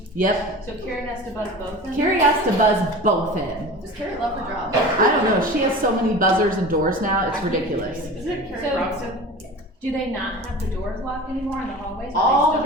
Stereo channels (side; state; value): both; normal; correlation 0.35